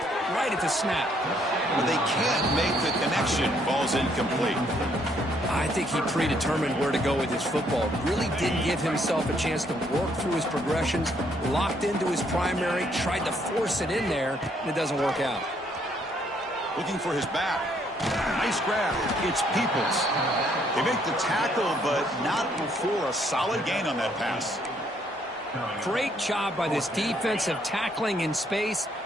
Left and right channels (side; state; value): both; normal; correlation 0.69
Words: right at the snap. But they can't make the connection. Ball's incomplete. I think he predetermined where to go with his football. Really didn't give himself a chance to work through his progressions, locked into his primary, tried to force it in there, and it doesn't work out. Looking for his back. Nice grab. It's Peoples. They make the tackle, but not before a solid gain on that pass. Great job by this defensive tackling in space.